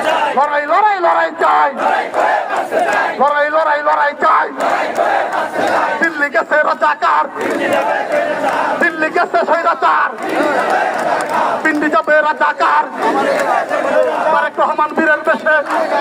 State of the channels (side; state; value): both; identical; correlation 1.00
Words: লড়াই লড়াই লড়াই চাই, লড়াই লড়াই লড়াই চাই। দিল্লি গেছে রাজাকার, দিল্লি গেছে স্বৈরাচার, পিন্ডি যাবে রাজাকার। তারেক রহমান বীরের বেশে